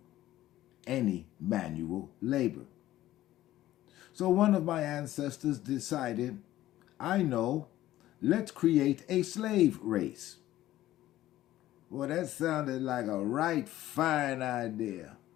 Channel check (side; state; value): right; quieter; 14.6 dB